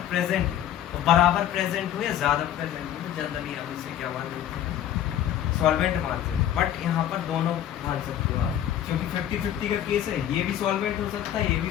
प्रेजेंट है तो बराबर प्रेजेंट हो या ज्यादा प्रेजेंट हो तो जनरली हम इसे क्या मान लेते हैं, सॉल्वेंट मानते हैं। बट यहाँ पर दोनों मान सकते हो आप, क्योंकि 50-50 का केस है, ये भी सॉल्वेंट हो सकता है, ये भी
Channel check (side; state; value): right; quieter; 11.0 dB